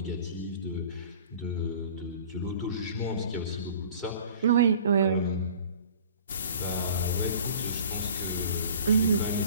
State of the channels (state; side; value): inverted; both; correlation -0.46